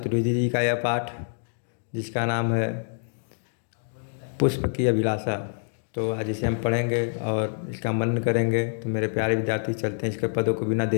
जी का यह पाठ जिसका नाम है पुष्प की अभिलाषा। तो आज इसे हम पढ़ेंगे और इसका मनन करेंगे। तो मेरे प्यारे विद्यार्थी चलते हैं इसके पदों को बिना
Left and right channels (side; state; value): right; silent; digital silence